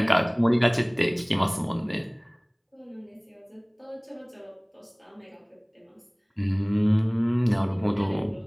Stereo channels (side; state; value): both; identical; correlation 1.00